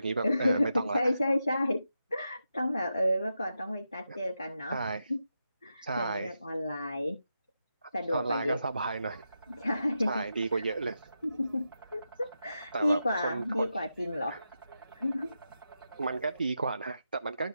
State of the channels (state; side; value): inverted; both; correlation -0.87